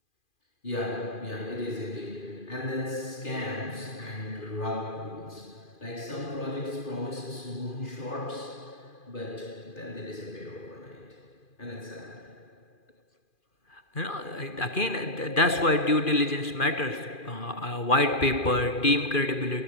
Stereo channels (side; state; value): right; late; 2.4 ms